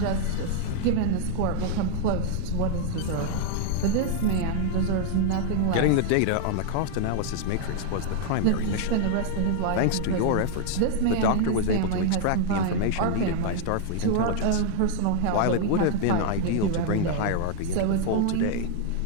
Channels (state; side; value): different; both; correlation 0.00